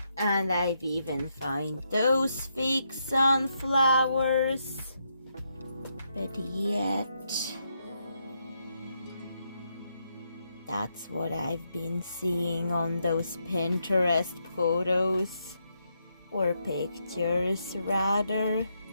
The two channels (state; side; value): inverted; both; correlation -0.79